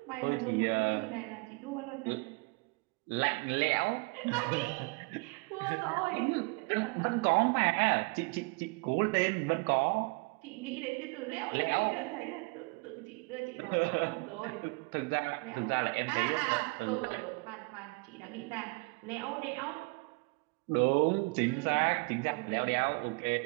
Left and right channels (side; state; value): left; quieter; 29.8 dB